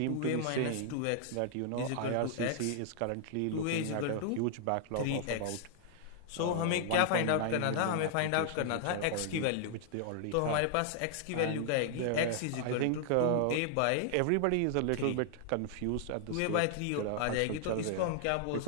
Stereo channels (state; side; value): different; both; correlation -0.01